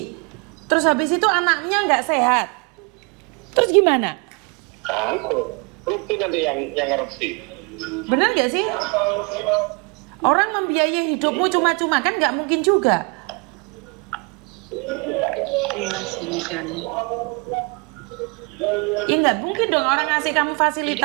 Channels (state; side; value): quieter; left; 31.7 dB